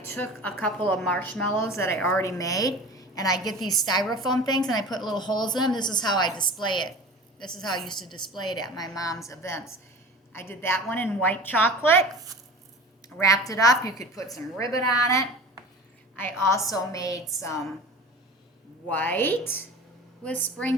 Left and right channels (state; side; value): normal; both; correlation 0.37